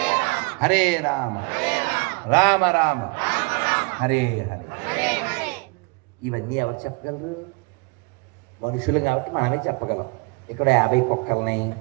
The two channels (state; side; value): quieter; left; 30.8 dB